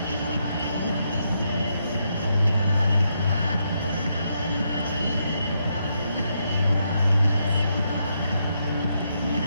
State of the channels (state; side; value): inverted; both; correlation -0.79